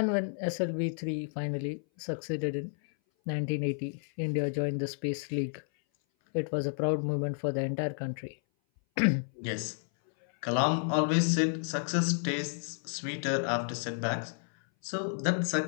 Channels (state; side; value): silent; right; 57 dB below the other